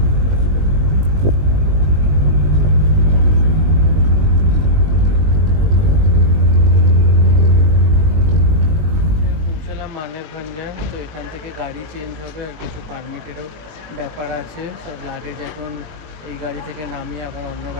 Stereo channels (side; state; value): left; late; 20 ms